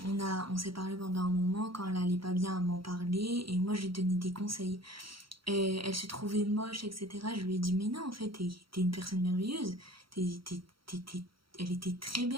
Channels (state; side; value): late; left; 0.74 ms